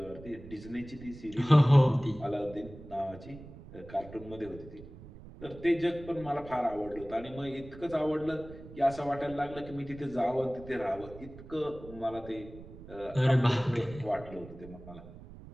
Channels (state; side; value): noise; right; rumble, 16 dB below the sound